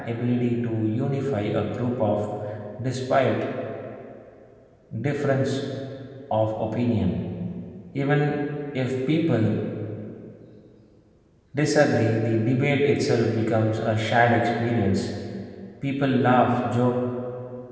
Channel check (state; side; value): identical; both; correlation 1.00